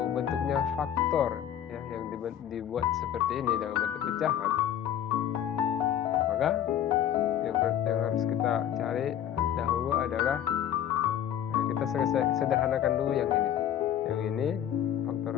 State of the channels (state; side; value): quieter; right; 10.3 dB